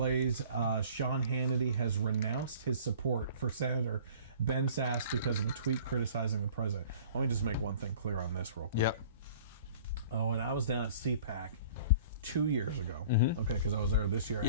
Sean Hannity has renounced his support for Senator Ben Sasse because of a tweet criticizing the president. Let me just make one thing clear on this real quick. When I was down at CPAC 2 years ago, because I was there this year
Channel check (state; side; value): inverted; both; correlation -0.48